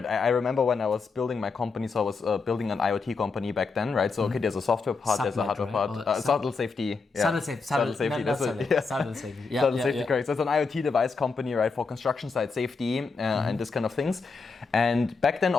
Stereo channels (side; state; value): right; quieter; 4.6 dB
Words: I remember when I was building my company, so I was building an IoT company back then, right? So, okay, there's a software part, there's a hardware part. Subtle safety. Subtle safety. Subtle safety, yeah. Subtle safety, correct. So it's an IoT device company, right, for construction site safety and this kind of things. And back then,